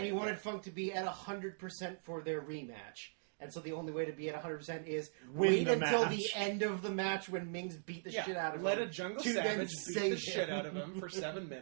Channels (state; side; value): silent; left; digital silence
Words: he wanted Funk to be at 100% for their rematch. And so the only way to be at 100% is Win wait the until match. the end of the match when Ming's beat the shit out of let him. a Jungle to then Savage beat the save shit him. out of him for 7